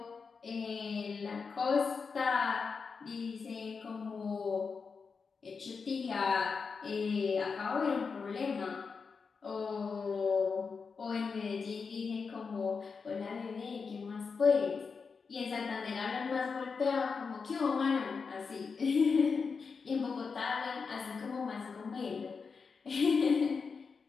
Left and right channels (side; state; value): right; quieter; 5.2 dB